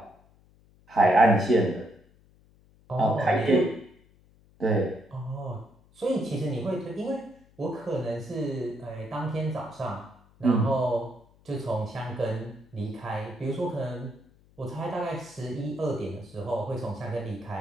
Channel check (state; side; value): noise; left; hum, 29 dB below the sound